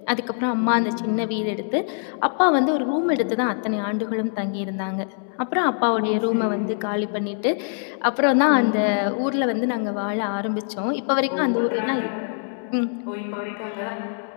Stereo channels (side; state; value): right; silent; 61 dB below the other